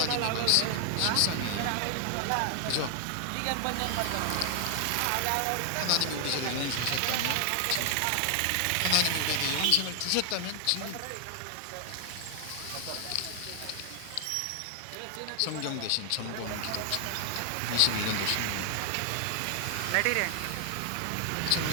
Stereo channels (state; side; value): different; both; correlation 0.00